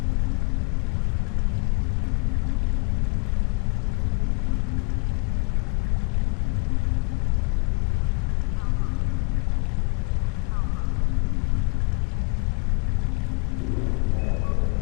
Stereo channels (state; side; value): quieter; right; 31.6 dB